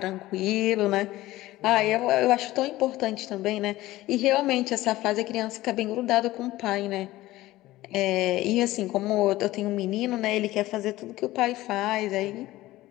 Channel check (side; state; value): right; quieter; 17.0 dB